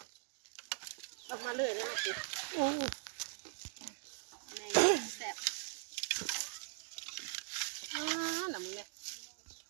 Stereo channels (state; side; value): silent; left; digital silence